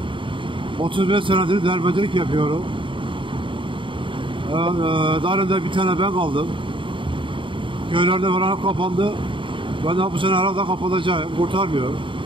35 senedir derbederlik yapıyorum. Darında bir tane ben kaldım. Köylerde falan kapandı. Ben de bu sene herhalde kapatacağım. Kurtarmıyor.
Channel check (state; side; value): late; left; 0.24 ms